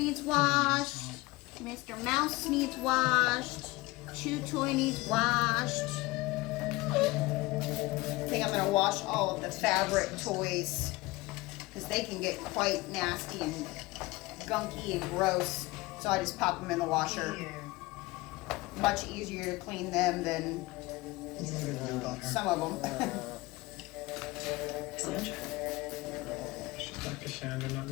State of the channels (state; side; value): quieter; right; 21.6 dB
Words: washed. Mr. Mouse needs washed. Chew Toy needs washed. I think I'm gonna wash all of the fabric toys because they can get quite nasty and gunky and gross. So I just pop them in the washer. Much easier to clean them than some of them. She's not Cassandra, not